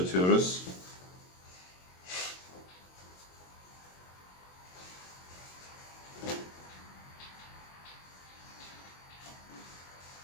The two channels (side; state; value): right; late; 22 ms